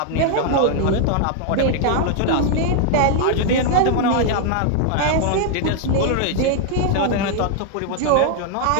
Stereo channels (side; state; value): both; different; correlation 0.00